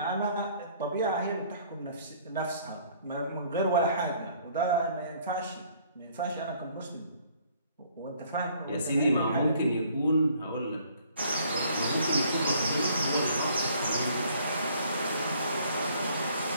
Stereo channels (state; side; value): inverted; both; correlation -0.60